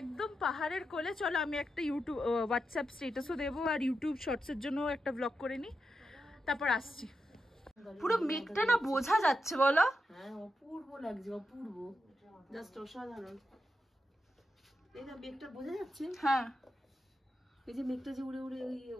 পাহাড়ের কোলে। চলো আমি একটা ইউটিউব হোয়াটসঅ্যাপ স্ট্যাটাসও দেবো, আর ইউটিউব শর্টসের জন্য একটা ব্লগ করে নিই, তারপর আসছি। পুরো মেঘটা না বোঝা যাচ্ছে, বলো? হ্যাঁ, অপূর্ব লাগছে, অপূর্ব, জাস্ট অসাধারণ। এই না মেঘটা বোঝা যাচ্ছে, হ্যাঁ, এই যে মেঘটা যে উড়ে উড়ে ওই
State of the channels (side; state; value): both; normal; correlation 0.87